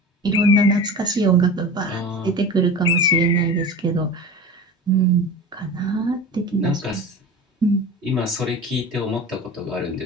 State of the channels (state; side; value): normal; both; correlation 0.33